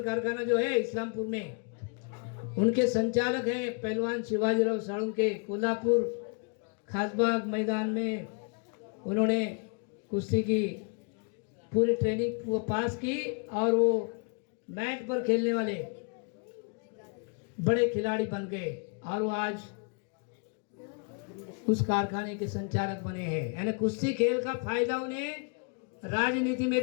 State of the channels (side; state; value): right; quieter; 38.2 dB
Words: कारखाना जो है इस्लामपुर में, उनके संचालक हैं पहलवान शिवाजीराव साळुंके। कोल्हापुर खासबाग मैदान में उन्होंने कुश्ती की पूरी ट्रेनिंग वो पास की और वो मैट पर खेलने वाले बड़े खिलाड़ी बन गए और वो आज उस कारखाने के संचालक बने हैं। यानी कुश्ती खेल का फायदा उन्हें राजनीति में